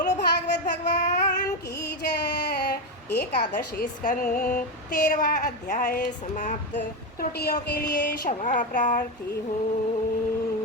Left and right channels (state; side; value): normal; both; correlation 0.11